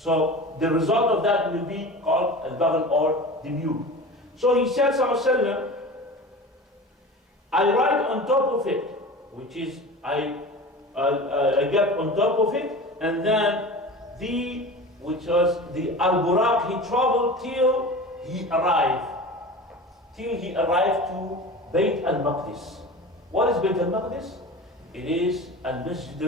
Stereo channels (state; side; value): normal; both; correlation 0.34